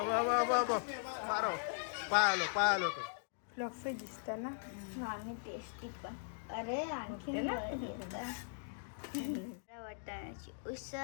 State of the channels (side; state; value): right; silent; digital silence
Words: मारो पायालो तो फ्लफी दिसतं ना. आणि टेस्टी पण. अरे आणखी वाटाण्याची